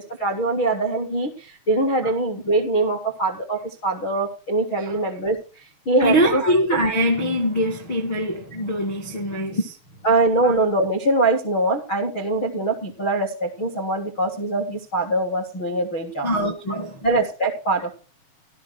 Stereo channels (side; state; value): right; late; 6.4 ms